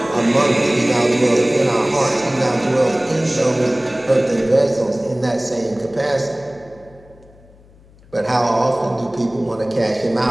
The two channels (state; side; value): noise; left; hum, 26 dB below the sound